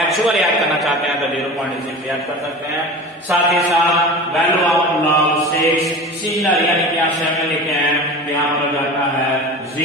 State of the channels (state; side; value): normal; both; correlation 0.34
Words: याद करना चाहते हैं तो 0.6 याद कर सकते हैं। साथ ही साथ वैल्यू ऑफ log 6 सिमिलर, यानी कि यहाँ 7 लिखे हैं तो यहाँ पर जाता है